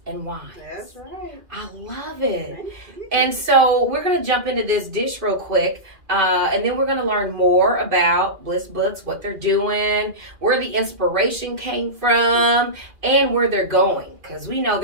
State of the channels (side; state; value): left; late; 2.4 ms